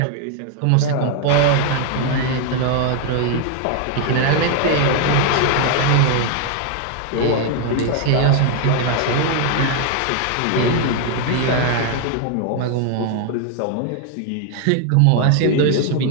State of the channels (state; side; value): different; both; correlation 0.01